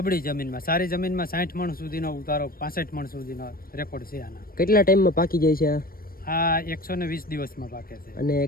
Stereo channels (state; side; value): late; right; 0.43 ms